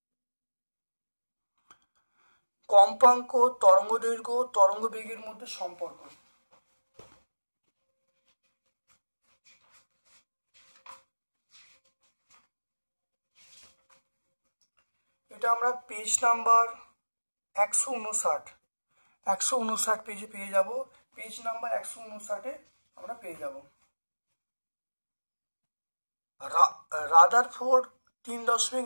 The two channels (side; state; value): both; inverted; correlation -1.00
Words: কম্পাঙ্ক, তরঙ্গ দৈর্ঘ্য, তরঙ্গ বেগের মধ্যে সম্পর্ক। এটা আমরা পেজ নাম্বার 159 পেজে পেয়ে যাব। পেজ নাম্বার 159 আমরা পেয়ে যাব। রাদারফোর্ড